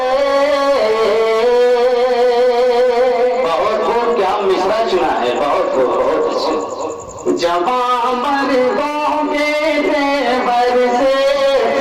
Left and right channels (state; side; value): identical; both; correlation 1.00